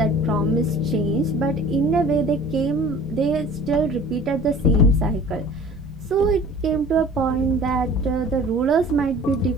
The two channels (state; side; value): noise; right; rumble, 19 dB below the sound